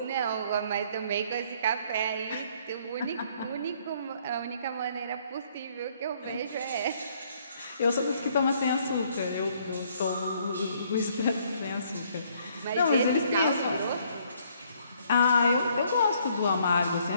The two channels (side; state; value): both; inverted; correlation -0.65